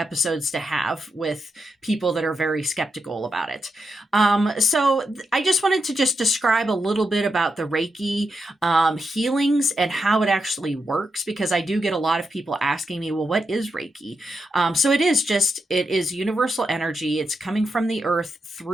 to have with people that are very skeptical about it. So I just wanted to just describe a little bit about the Reiki healings and how it actually works, because I do get a lot of people asking me, well, what is Reiki? So it is universal energy. It's coming from the earth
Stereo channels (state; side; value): normal; both; correlation 0.85